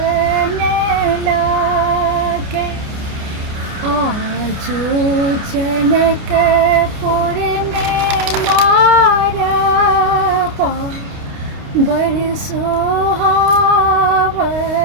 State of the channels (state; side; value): late; left; 29 ms